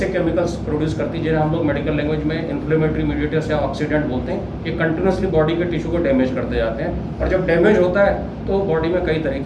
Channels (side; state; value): both; identical; correlation 1.00